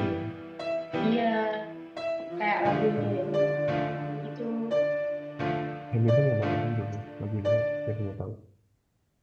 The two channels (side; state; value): both; identical; correlation 1.00